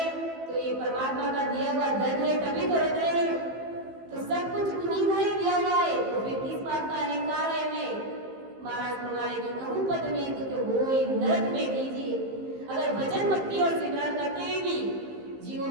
तो ये परमात्मा का दिया हुआ धन है, तभी तो रख रहे हैं। तो सब कुछ उन्हीं का ही दिया हुआ है, तो फिर किस बात का अहंकार है हमें? महाराज फरमाए कि कहूं पद में तो होए नरक में दीजिए। अगर भजन भक्ति और सिमरन करते हुए भी जीवों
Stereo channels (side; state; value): left; late; 15 ms